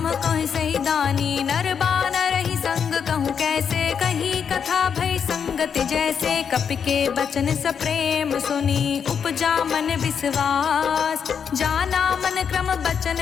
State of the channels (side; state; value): right; quieter; 7.1 dB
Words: कह सही दानी। नर बानर ही संग कहूँ कैसे कही कथा भई संगति जैसे। कपि के बचन सप्रेम सुनी उपजा मन विश्वास। जाना मन क्रम बचन